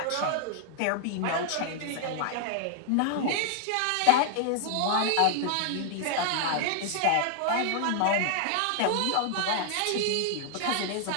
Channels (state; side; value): different; both; correlation 0.00